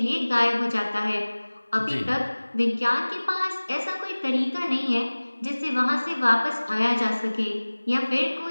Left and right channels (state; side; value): inverted; both; correlation -1.00